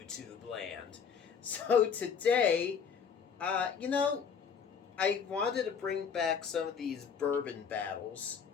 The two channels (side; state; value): right; quieter; 6.7 dB